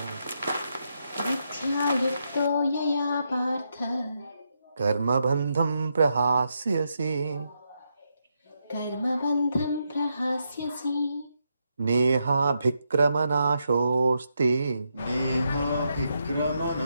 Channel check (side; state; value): both; inverted; correlation -0.82